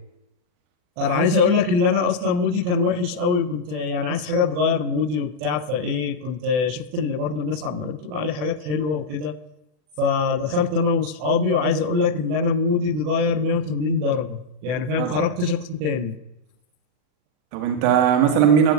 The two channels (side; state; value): left; late; 40 ms